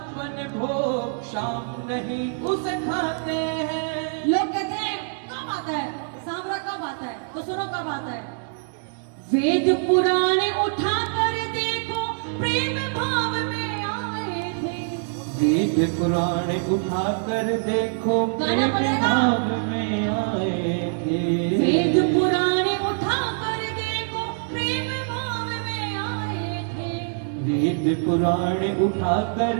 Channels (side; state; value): left; silent; 62 dB below the other